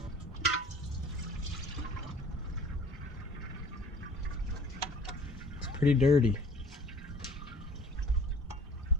It's pretty dirty.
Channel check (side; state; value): both; normal; correlation 0.49